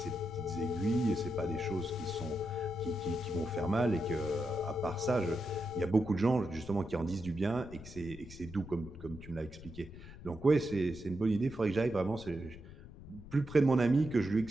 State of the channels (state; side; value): noise; left; rumble, 15 dB below the sound